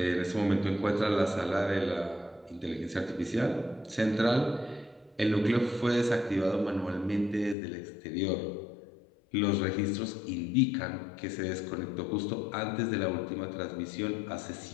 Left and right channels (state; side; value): drops out; right; at 7.6 s